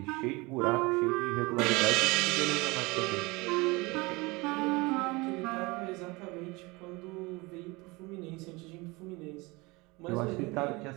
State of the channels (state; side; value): quieter; left; 24.6 dB